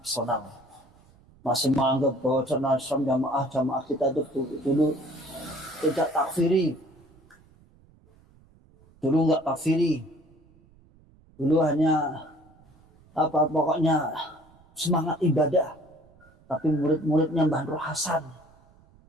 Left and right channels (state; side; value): noise; right; rumble, 29 dB below the sound